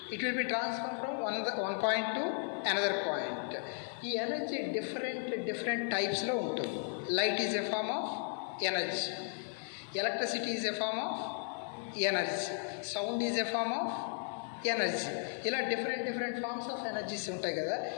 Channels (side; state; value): right; silent; 54 dB below the other